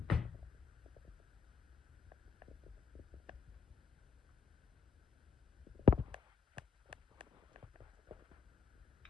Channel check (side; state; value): right; quieter; 5.8 dB